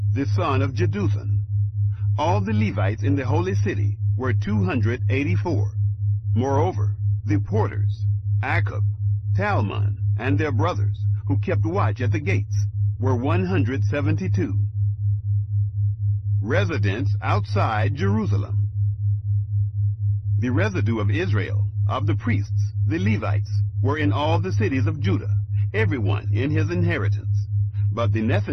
the son of Jeduthun. All the Levites in the holy city were 284. Moreover, the porters, Akub, Talmon, and their brothers, who kept watch at the gates, were 172. Residents outside Jerusalem. The residue of Israel, of the priests, the Levites, were in all the cities of Judah, everyone in his inheritance. But the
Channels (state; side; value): identical; both; correlation 1.00